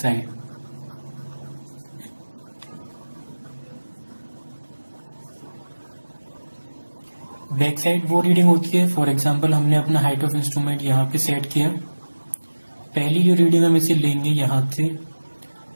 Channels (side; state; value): both; inverted; correlation -1.00